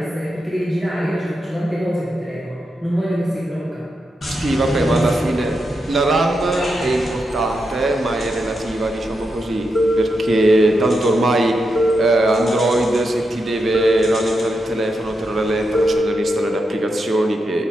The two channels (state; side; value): normal; both; correlation 0.85